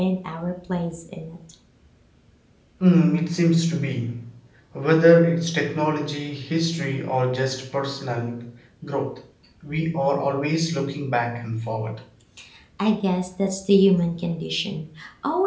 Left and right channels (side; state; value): both; identical; correlation 1.00